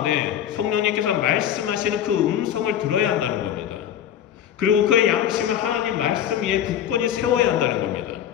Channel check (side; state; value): right; quieter; 10.0 dB